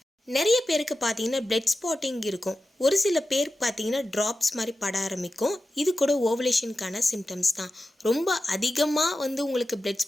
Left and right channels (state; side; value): normal; both; correlation 0.93